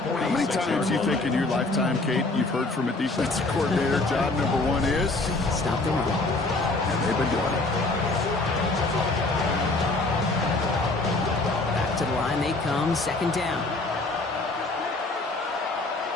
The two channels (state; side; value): quieter; right; 3.1 dB